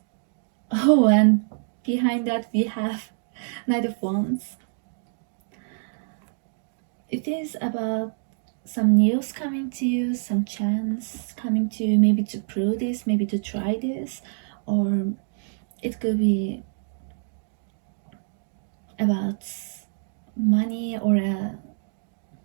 oh, and behind that we have Knight of Wands. It is about some news coming to you, some chance coming to you, maybe to prove this, maybe to try this, or it could be about money or a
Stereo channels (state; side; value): silent; left; digital silence